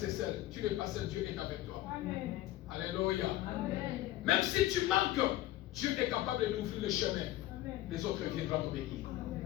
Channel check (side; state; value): right; quieter; 15.3 dB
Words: seul, tu n'es pas seul, Dieu est avec toi. Amen. Alléluia. Amen. Même si tu manques, Dieu est capable d'ouvrir le chemin. Amen. Les autres viendront t'obéir.